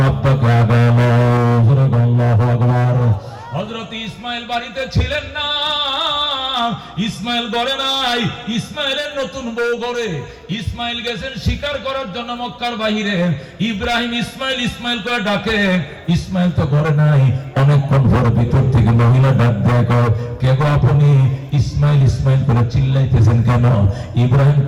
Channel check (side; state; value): both; identical; correlation 1.00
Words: আব্বাকে আগালো। আল্লাহু আকবার। হযরত ইসমাইল বাড়িতে ছিলেন না, ইসমাইল ঘরে নাই, ইসমাইলের নতুন বউ ঘরে। ইসমাইল গেছেন শিকার করার জন্য মক্কার বাহিরে। ইব্রাহিম ইসমাইল ইসমাইল করে ডাকে, ইসমাইল তো ঘরে নাই। অনেকক্ষণ পরে ভিতর থেকে মহিলা ডাক দেয়, কে গো আপনি? ইসমাইল ইসমাইল করে চিল্লাইতেছেন কেন? ইব্রাহিম